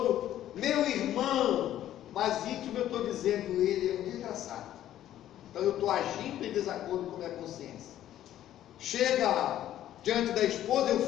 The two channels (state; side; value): quieter; right; 12.3 dB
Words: meu irmão, mas íntimo eu estou dizendo, ele é um desgraçado. Então eu estou agindo em desacordo com a minha consciência. Chega diante da esposa, eu